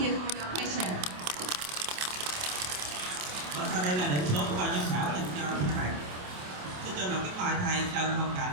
for your question. Và sau đây là điểm số của ban giám khảo dành cho các bạn. Xin cho lòng kính mời thầy Trần Hồng Cảnh.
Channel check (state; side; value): late; left; 27 ms